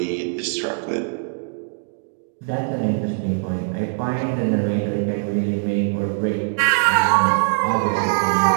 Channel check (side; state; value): left; silent; digital silence